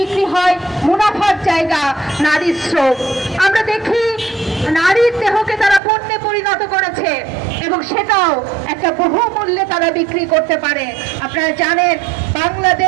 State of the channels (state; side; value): drops out; left; at 5.8 s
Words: হয়, মুনাফার জায়গা নারীর শ্রম। আমরা দেখি নারীর দেহকে তারা পণ্যে পরিণত করেছে এবং সেটাও একটা বহুমূল্যে তারা বিক্রি করতে পারে। আপনারা জানেন